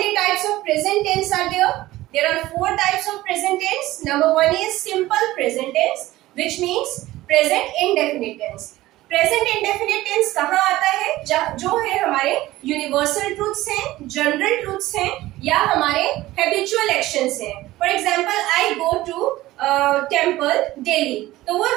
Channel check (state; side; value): quieter; left; 16.9 dB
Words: types of present tense are there? There are 4 types of present tense. Number 1 is simple present tense, which means present indefinite tense. Present indefinite tense कहाँ आता है? जो है हमारे universal truths हैं, general truths हैं या हमारे हैबिचुअल एक्शंस हैं. For example I go to temple daily, तो वो